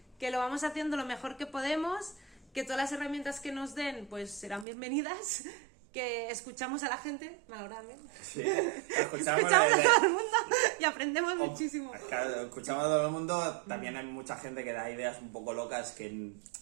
que lo vamos haciendo lo mejor que podemos, que todas las herramientas que nos den pues serán bienvenidas, que escuchamos a la gente, malauradamente. Sí, escuchamos Escuchamos a todo el mundo y aprendemos muchísimo. Claro, escuchamos a todo el mundo. También hay mucha gente que da ideas un poco locas que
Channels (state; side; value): drops out; left; at 4.7 s